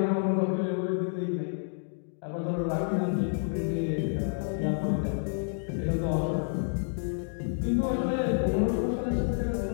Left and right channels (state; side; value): silent; right; digital silence